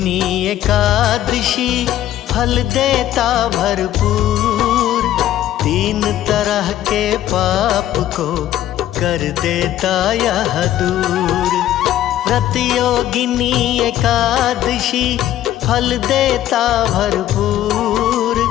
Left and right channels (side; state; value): right; quieter; 12.7 dB